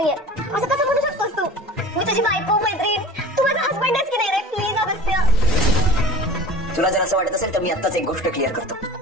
असं कसं बोलू शकतोस तू? मी तुझी बायको, मैत्रीण, तू माझा हसबंड आहेस की नाही रे? प्लीज अगस्त्य. तुला जर असं वाटत असेल तर मी आत्ताच एक गोष्ट क्लिअर करतो.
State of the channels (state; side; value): normal; both; correlation 0.38